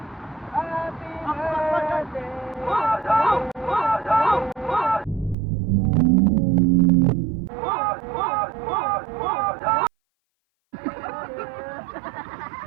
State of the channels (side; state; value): left; drops out; at 5.4 s